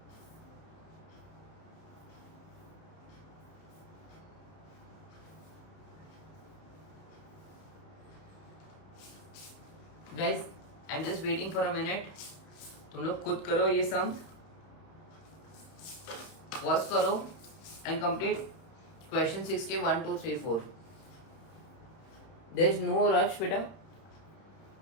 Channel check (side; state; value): right; late; 31 ms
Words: guys I am just waiting for a minute. तुम लोग खुद करो ये सम, पॉज करो एंड कंप्लीट क्वेश्चन 6 के 1 2 3 4. देयर इज नो रश बेटा,